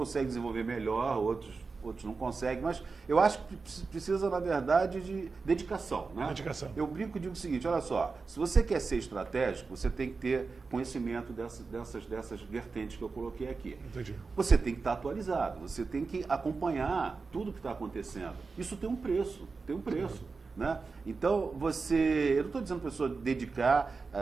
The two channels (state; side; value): quieter; left; 4.4 dB